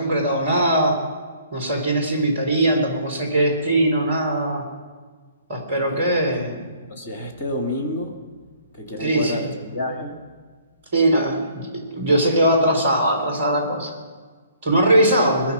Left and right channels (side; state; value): both; inverted; correlation -0.60